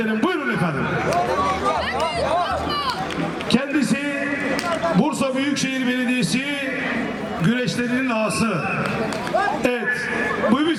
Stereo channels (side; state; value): both; identical; correlation 1.00